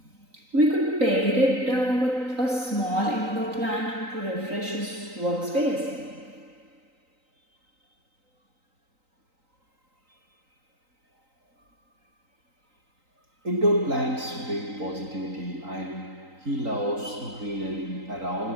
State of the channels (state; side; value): late; left; 3.9 ms